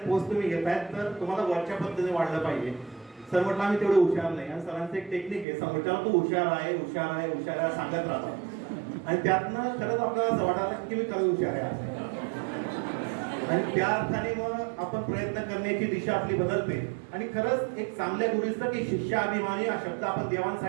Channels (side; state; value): left; drops out; at 5.5 s